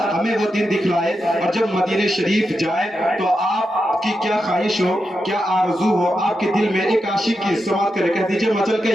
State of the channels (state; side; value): normal; both; correlation 0.87